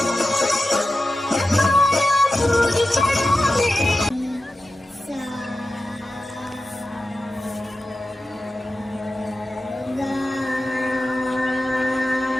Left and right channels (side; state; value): both; normal; correlation 0.93